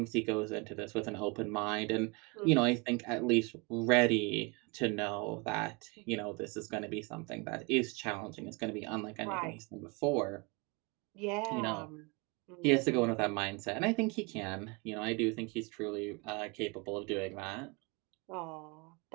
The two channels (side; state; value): left; quieter; 29.6 dB